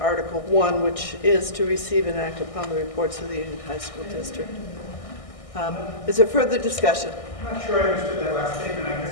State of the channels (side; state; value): right; late; 1.6 ms